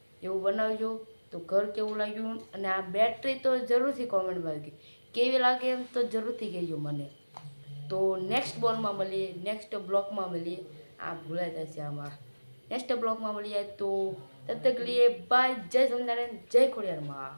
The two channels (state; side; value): inverted; both; correlation -1.00